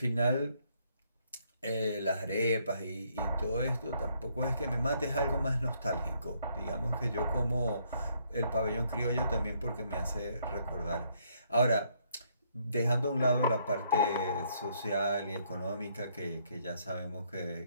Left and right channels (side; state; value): both; inverted; correlation -0.70